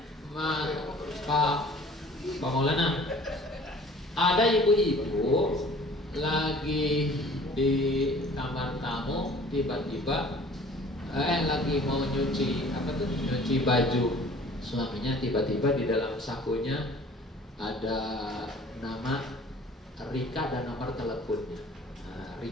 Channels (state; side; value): normal; both; correlation 0.50